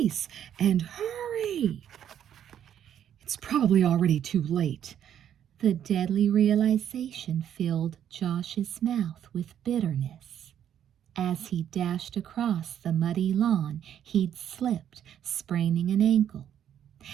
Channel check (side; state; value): left; quieter; 9.9 dB